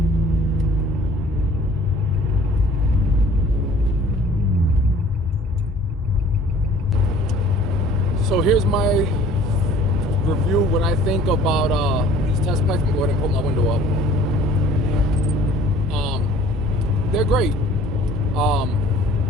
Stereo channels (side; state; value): both; normal; correlation 0.52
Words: So here's my review when I think about these test pipes. I'm gonna go ahead and put my window up. They're great. For